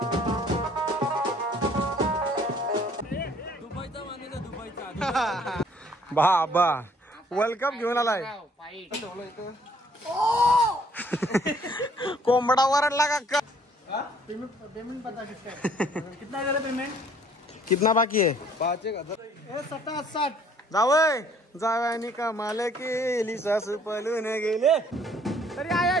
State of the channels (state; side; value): normal; both; correlation 0.60